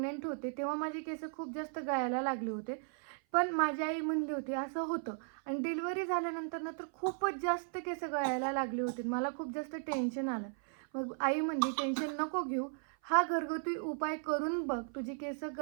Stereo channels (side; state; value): left; silent; 54 dB below the other